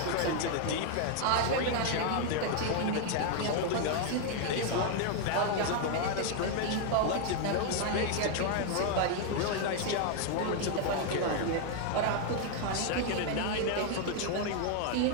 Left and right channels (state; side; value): different; both; correlation 0.00